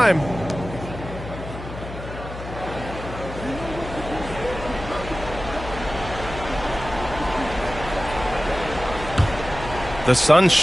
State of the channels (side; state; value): left; noise; hum, 11 dB below the sound